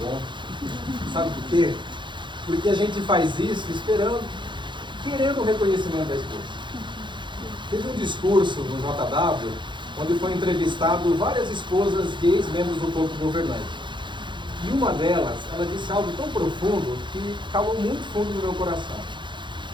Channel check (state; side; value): late; left; 0.23 ms